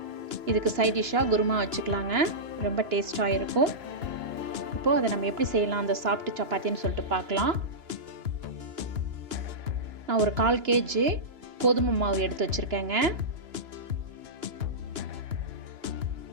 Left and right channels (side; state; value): left; late; 2.9 ms